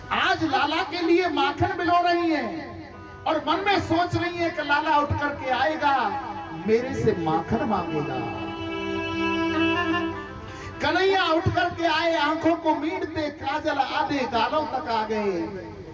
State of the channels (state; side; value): identical; both; correlation 1.00